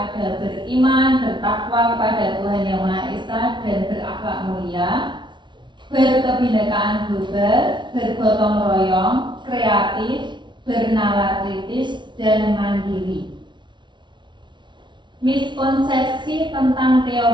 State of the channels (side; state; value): left; late; 0.23 ms